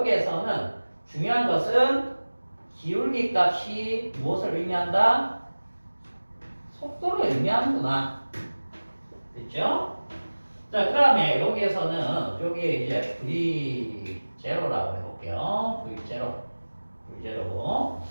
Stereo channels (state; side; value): inverted; both; correlation -1.00